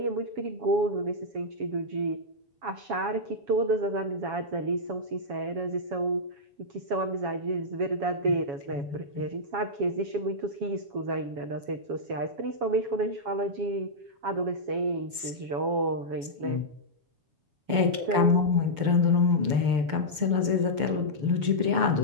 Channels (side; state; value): left; late; 6.8 ms